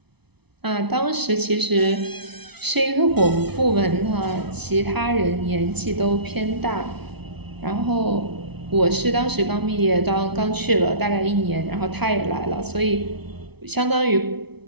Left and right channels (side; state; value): left; late; 0.99 ms